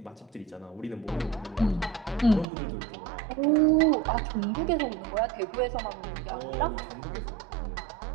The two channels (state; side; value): drops out; left; at 2.5 s